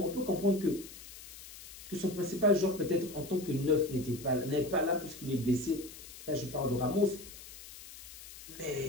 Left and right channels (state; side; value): noise; left; hiss, 15 dB below the sound